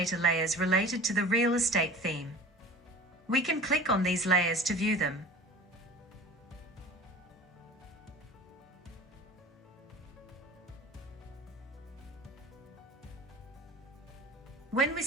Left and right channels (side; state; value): both; normal; correlation 0.40